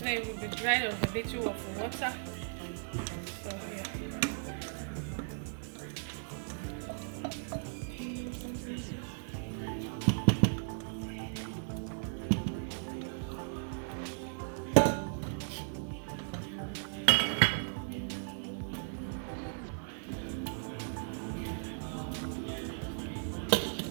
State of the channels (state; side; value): silent; left; 54 dB below the other